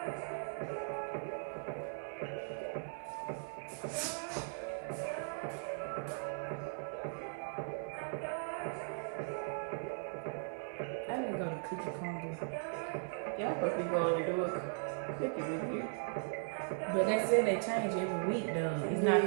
I need to go to Cookie Congo. Y'all supposed to be going to do a cookie review. But they said they change every week though. It's not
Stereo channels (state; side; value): silent; left; 52 dB below the other